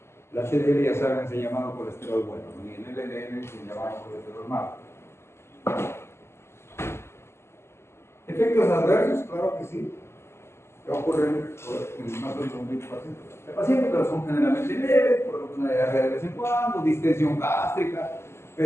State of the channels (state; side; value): late; right; 0.12 ms